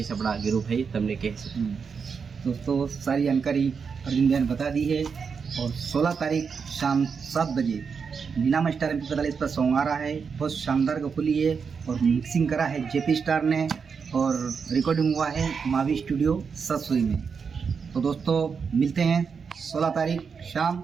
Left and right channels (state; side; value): quieter; left; 5.9 dB